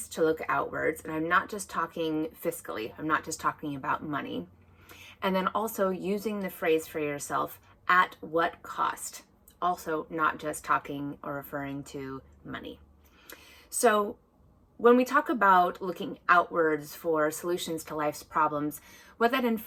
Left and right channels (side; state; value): both; identical; correlation 1.00